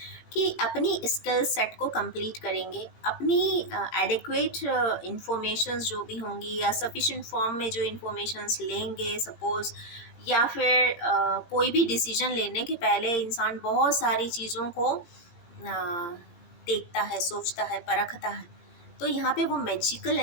कि अपनी स्किल सेट को कंप्लीट करेंगे, अपनी एडिक्वेट इंफॉर्मेशंस जो भी होंगी या सफिशिएंट फॉर्म में जो इंफॉर्मेशंस लेंगे सपोज़, या फिर कोई भी डिसीजन लेने के पहले इंसान बहुत सारी चीज़ों को देखता है, सोचता है, परखता है। तो यहाँ पे वो मैजिकल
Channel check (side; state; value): right; late; 17 ms